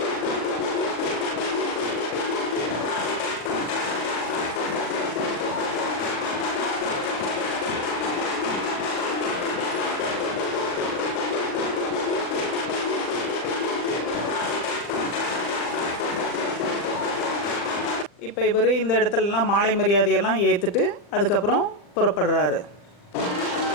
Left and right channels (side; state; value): right; late; 40 ms